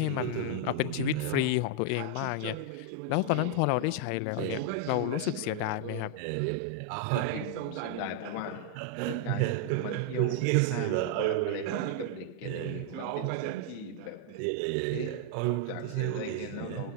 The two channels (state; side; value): different; both; correlation 0.00